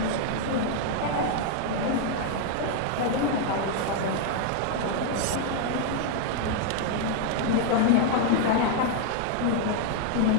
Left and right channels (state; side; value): different; both; correlation 0.00